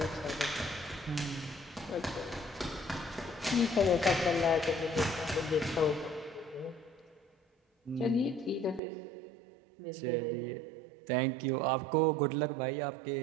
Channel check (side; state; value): left; drops out; at 8.8 s